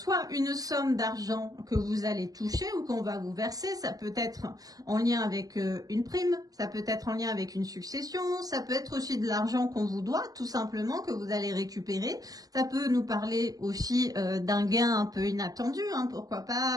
une somme d'argent que vous allez toucher ou qu'on va vous verser, ça peut être en lien avec une prime, ça peut être en lien avec une succession, ça peut être aussi de l'argent qu'on vous doit, tout simplement, que vous allez récupérer. Ça peut nous parler aussi d'un gain un peu inattendu, hein, pourquoi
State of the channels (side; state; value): left; late; 0.18 ms